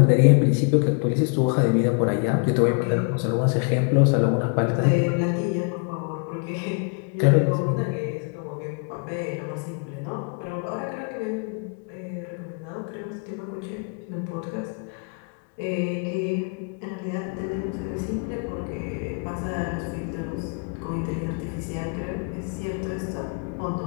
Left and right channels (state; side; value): quieter; right; 35.8 dB